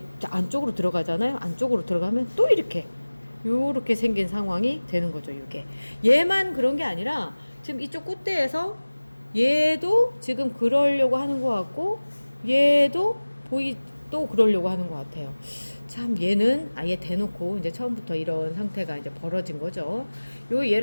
안쪽으로 들어가잖아요. 안쪽으로 들어가면 또 이렇게 요렇게 생긴 상황이 되는 거죠. 이게 얘만 그런 게 아니라 지금 이쪽 꽃대에서 얘도 지금 그러려고 하는 것 같고 얘도 또 그러려고 하는 것 같아요. 참 얘는 아예 대놓고 이제 처음부터 이런 상태가 이제 벌어진 거죠. 요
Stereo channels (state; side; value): inverted; both; correlation -1.00